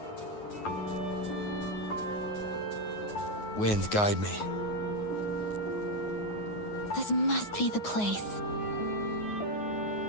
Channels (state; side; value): late; right; 9.5 ms